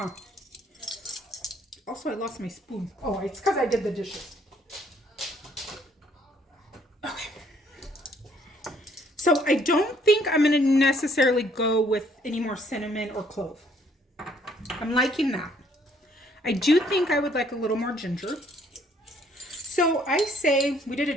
Also, I lost my spoon. Oh, it's because I did the dishes. Okay. So, I don't think I'm going to necessarily go with any more cinnamon or clove. I'm liking that. I do think I would like a little more ginger. So, I say, we did a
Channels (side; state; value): both; normal; correlation 0.65